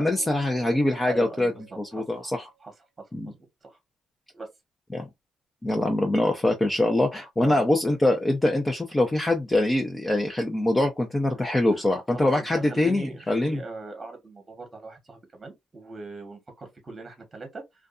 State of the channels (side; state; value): both; normal; correlation 0.92